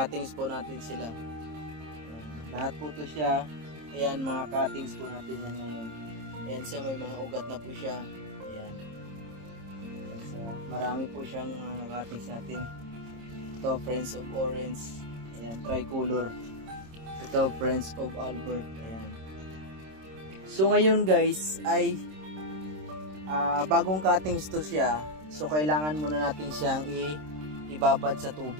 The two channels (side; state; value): left; late; 26 ms